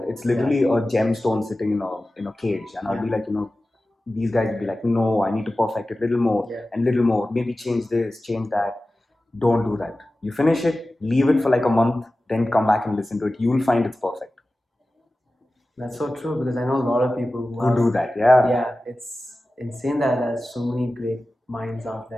It's literally a gemstone sitting in a cage, and I'll be like, these guys will be like, no, I need to perfect it a little more and little more. Maybe change this, change that. Don't do that. You finish it, leave it for like a month, then come back and listen to it. You'll find it's perfect. That's so true because I know a lot of people who do that. Yeah. Yeah, it's insane that there's so many great minds out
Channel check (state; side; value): normal; both; correlation 0.95